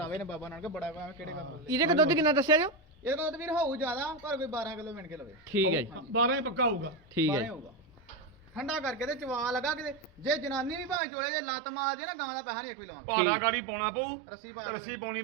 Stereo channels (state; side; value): drops out; left; at 11.0 s